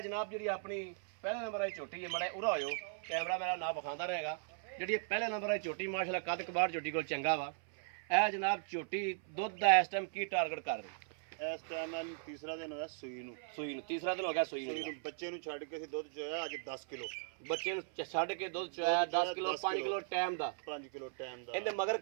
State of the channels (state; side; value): silent; left; 52 dB below the other